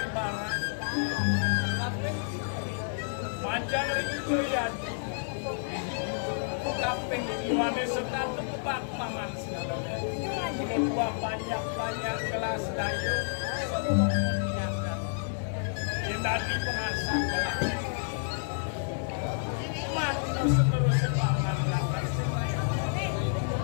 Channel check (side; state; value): right; silent; digital silence